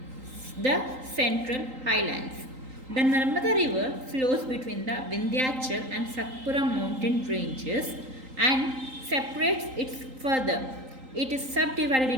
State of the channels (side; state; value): left; late; 3.8 ms